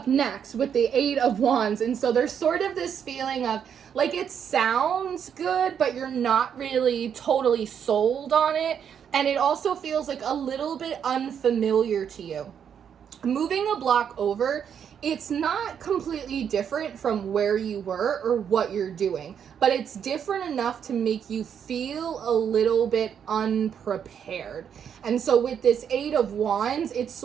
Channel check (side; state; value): left; quieter; 8.1 dB